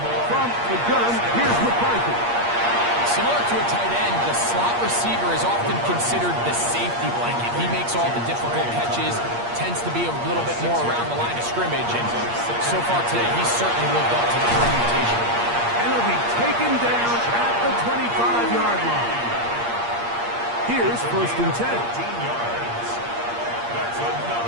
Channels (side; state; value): left; late; 8.5 ms